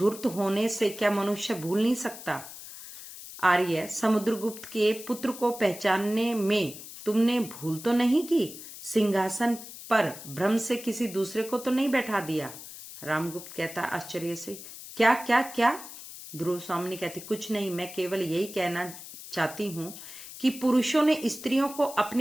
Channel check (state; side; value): noise; left; hiss, 13 dB below the sound